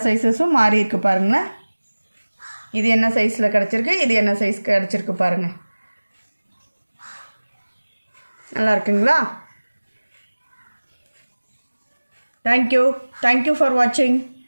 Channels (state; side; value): inverted; both; correlation -1.00